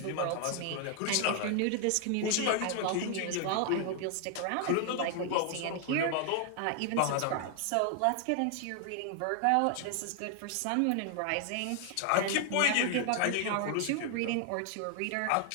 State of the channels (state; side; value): different; both; correlation 0.00